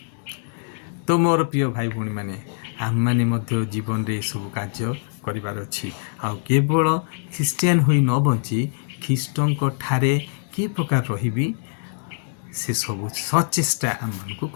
तो मोर प्रिय भाई भौणी माने आम माने मध्य जीवन रे सब कार्य करिबार अछि। आ केवल ख्रीस्टियान होई न बंची ख्रीष्टंक ठारे कि प्रकार रहिबी से सब सचेष्टा आम मानकु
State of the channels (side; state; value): right; silent; digital silence